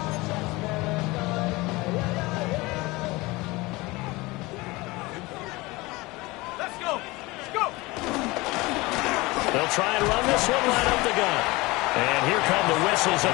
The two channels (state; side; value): quieter; right; 22.2 dB